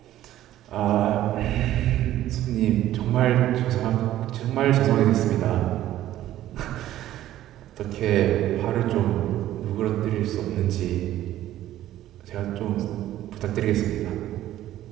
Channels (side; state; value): left; quieter; 13.4 dB